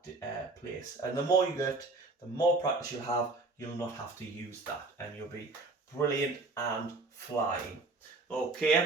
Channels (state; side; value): quieter; left; 3.4 dB